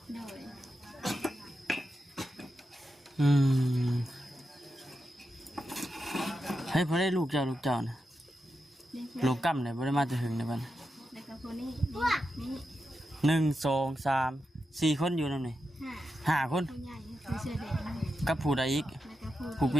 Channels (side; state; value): both; normal; correlation 0.88